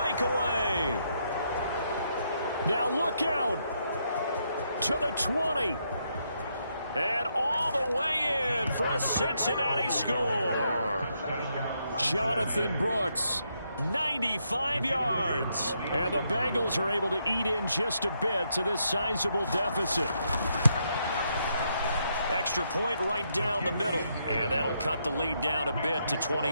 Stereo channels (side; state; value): both; inverted; correlation -0.78